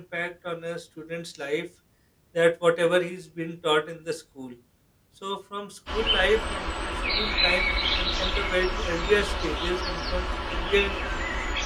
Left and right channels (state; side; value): identical; both; correlation 1.00